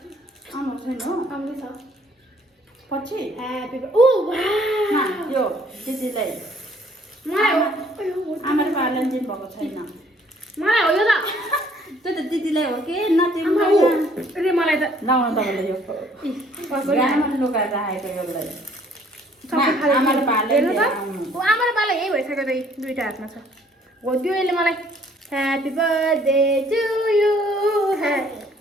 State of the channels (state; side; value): normal; both; correlation 0.61